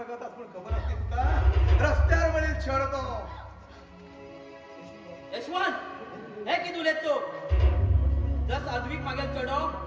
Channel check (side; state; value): both; identical; correlation 1.00